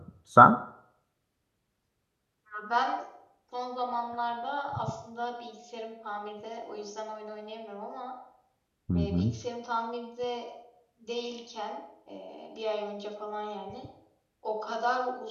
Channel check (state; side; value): identical; both; correlation 1.00